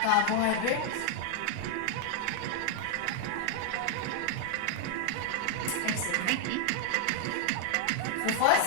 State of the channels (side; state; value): both; different; correlation 0.00